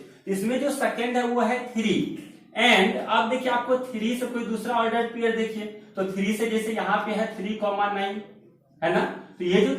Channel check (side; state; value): both; identical; correlation 1.00